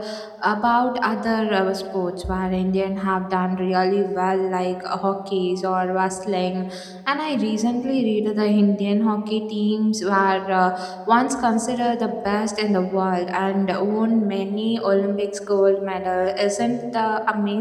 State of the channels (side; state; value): both; identical; correlation 1.00